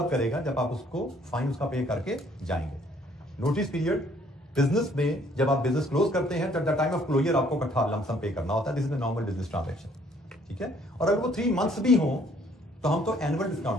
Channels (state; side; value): normal; both; correlation 0.62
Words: करेगा जब आप उसको फाइन उसका पे करके जाएंगे। नोटिस पीरियड बिजनेस में जब आप बिजनेस क्लोज करते हैं, द टाइम ऑफ क्लोजर आपको इकट्ठा लमसम पे करना होता है। This is the normal business transaction, ठीक है। और अगर वो 3 मंथ्स भी हो तो हम तो एनुअल